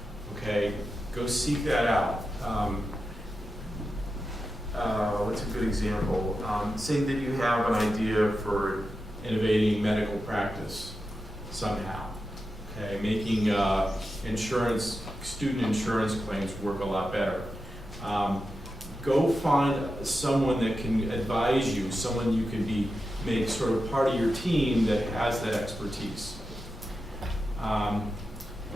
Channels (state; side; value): normal; both; correlation 0.90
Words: okay? Go seek that out. What's a good example? Say that you have an idea for innovating medical practice somehow, okay? Making student insurance claims work a lot better. Go find someone that can advise you, someone you can make sort of part of your team that has that expertise.